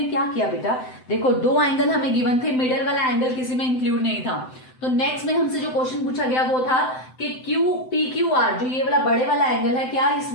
क्या किया बेटा, देखो दो एंगल हमें गिवन थे, मिडल वाला एंगल किसी में इंक्लूड नहीं था. तो नेक्स्ट में हमसे जो क्वेश्चन पूछा गया वो था कि PQR, जो ये वाला बड़े वाला एंगल है, क्या इस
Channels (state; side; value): late; right; 7.8 ms